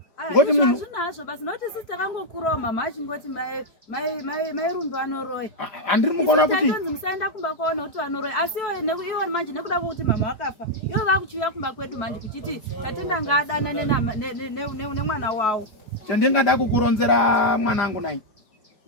Ngoti munhu zvinazvo basi noti sisi takangokurawo mama achingoti mai Rumbi vanoroya. Handiri mukuona kuti musaenda kumba kwaona kuti vanoroya, asi iwo manje nekuda kwokuti mama wakafa iwo vakuchiuya kumba kwedu manje kuchiti tatenda ngaadana nemwana wawo. Chandingada kukuronzera mwanangu nai,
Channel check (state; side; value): late; right; 5.0 ms